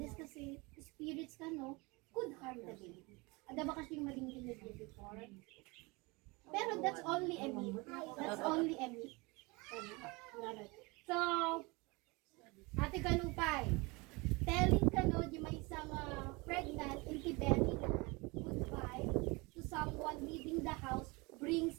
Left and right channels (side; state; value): left; quieter; 26.0 dB